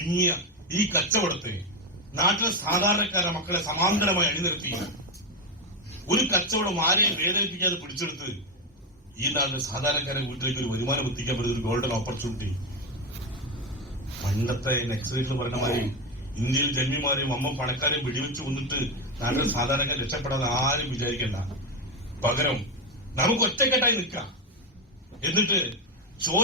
ഈ കച്ചവടത്തെ നാട്ടിലെ സാധാരണക്കാരെ മക്കളെ സമാന്തരമായി അണിനിരത്തി ഒരു കച്ചവടം ആരെയും വേദനിപ്പിക്കാതെ പിടിച്ചെടുത്ത് ഈ നാട്ടിലെ സാധാരണക്കാരെ വീട്ടിലേക്ക് ഒരു വരുമാനം എത്തിക്കാൻ പറ്റുന്ന ഒരു ഗോൾഡൻ ഓപ്പർച്യൂണിറ്റി. പണ്ടത്തെ നെക്സലൈറ്റ് പറഞ്ഞ മാതിരി ഇന്ത്യയിൽ ജന്മിമാരെയും വമ്പം പണക്കാരെയും വെടിവെച്ച് കൊന്നിട്ട് നാട്ടിലെ സാധാരണക്കാർ രക്ഷപ്പെടാതെ ആരും വിചാരിക്കണ്ട. പകരം നമുക്ക് ഒറ്റക്കെട്ടായി നിൽക്കാം, എന്നിട്ട്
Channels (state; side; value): normal; both; correlation 0.11